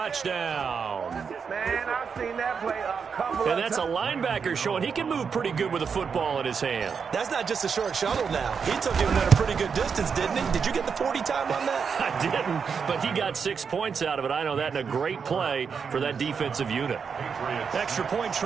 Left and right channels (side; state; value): left; quieter; 6.1 dB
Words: Man, I've seen that play a couple of times. And that's a linebacker showing he can move pretty good with a football in his hand. That's not just a short shuttle now. He took him at a pretty good distance, didn't he? Did you get the 40 time on that? I didn't, but he got 6 points out of it. I know that, and a great play for that defensive unit. Extra point